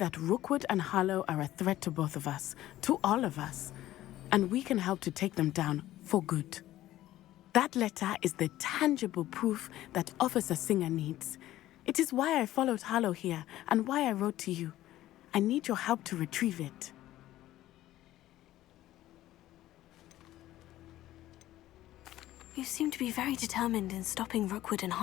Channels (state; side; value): quieter; right; 14.6 dB